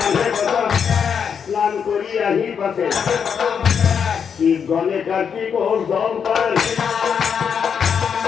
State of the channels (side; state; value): right; quieter; 7.1 dB